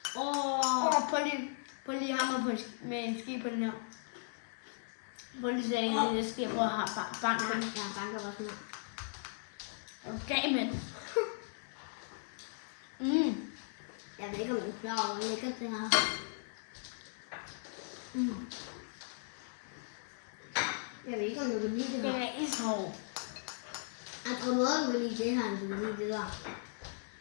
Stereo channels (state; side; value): silent; right; digital silence